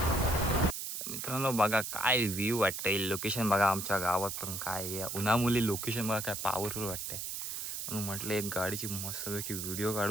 मित्रांनो बघा काय व्ह्यू वाटतंय, लोकेशन बघा आमच्या गावात. पण काय उन्हामुळे लोकेशन बघा काय पॉवरफुल वाटतंय. म्हणून म्हटलं एक गाडीची मस्तपैकी व्हिडिओ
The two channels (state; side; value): noise; right; hiss, 5 dB below the sound